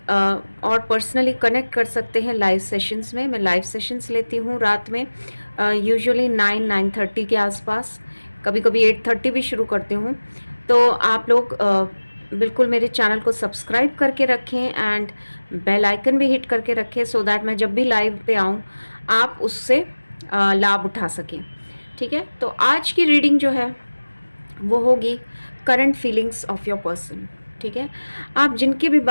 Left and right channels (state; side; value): inverted; both; correlation -1.00